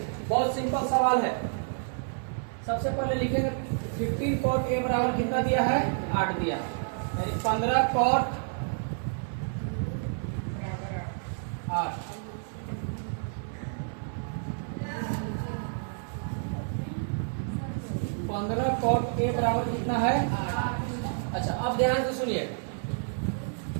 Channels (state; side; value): silent; left; 58 dB below the other